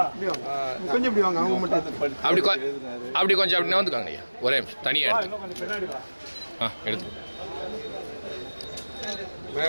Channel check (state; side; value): inverted; both; correlation -1.00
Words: கொஞ்சம் இப்படி வாங்க. அவங்க மட்டும் அப்படி கொஞ்சம் அப்படி வந்துக்காங்க ஐயா. ஒரே நிமிஷம் தனியா எடுத்து எடுத்து